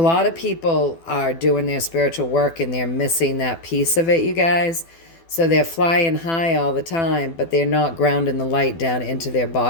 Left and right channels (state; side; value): late; right; 12 ms